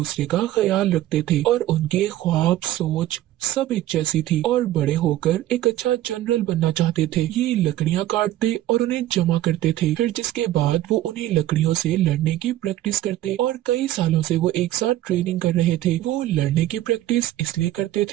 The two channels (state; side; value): quieter; left; 14.0 dB